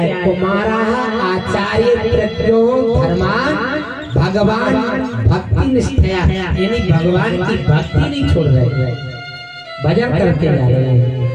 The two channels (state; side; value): identical; both; correlation 1.00